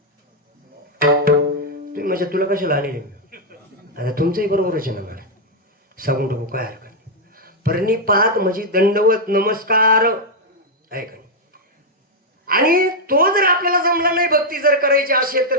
तुम्ही म्हणजे तुला कशाला आले आता तुमचंही बरोबरच आहे ना मला सांगून टाकू काय हरकत नाही. प्रणिपात म्हणजे दंडवत नमस्कार आहे का. आणि तो जर आपल्याला जमला नाही भक्ती जर करायची असेल तर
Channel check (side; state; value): both; normal; correlation -0.02